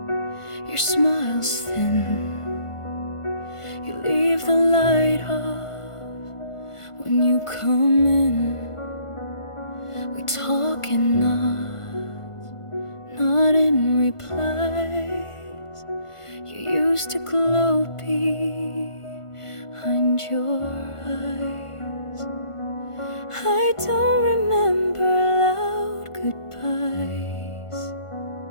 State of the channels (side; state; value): right; late; 1.5 ms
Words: your smile's thin. You leave the light off when you come in. We talk in nods, not in replies. You used to glow behind your eyes. I don't remember loud goodbyes,